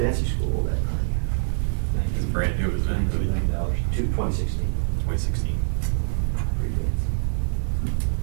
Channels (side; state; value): left; silent; digital silence